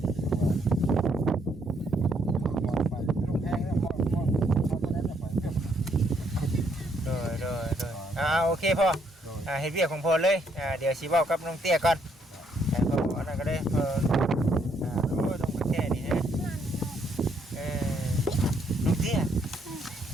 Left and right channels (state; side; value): normal; both; correlation 0.71